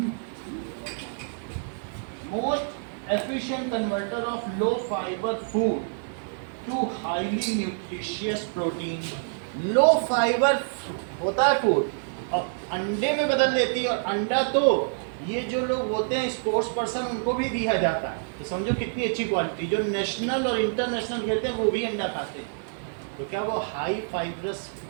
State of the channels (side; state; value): left; silent; 60 dB below the other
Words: most efficient converter of low fibre food to highly nutritious protein. Low fibre होता है फूड और अंडे में बदल देती है, और अंडा तो ये जो लोग होते हैं स्पोर्ट्स पर्सन उनको भी दिया जाता है। तो समझो कितनी अच्छी क्वालिटी। जो नेशनल और इंटरनेशनल खेलते हैं वो भी अंडा खाते हैं। तो क्या वो हाई फाइब्रस